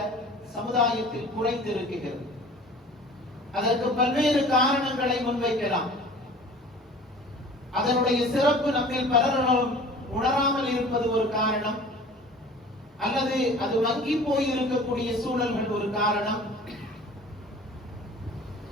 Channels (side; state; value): both; normal; correlation 0.45